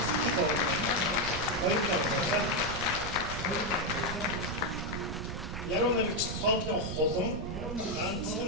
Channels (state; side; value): noise; right; rumble, 7 dB below the sound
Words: яруу найрагч цоодлын хулан